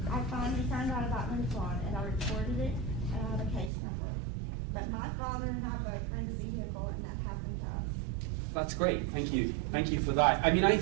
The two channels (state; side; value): drops out; left; at 3.7 s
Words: I finally found out about Lincoln, and I reported it, and I have a case number. But my father and I both were in the vehicle, and that happened to us. That's great. Thank you. Thank you for that. I mean, I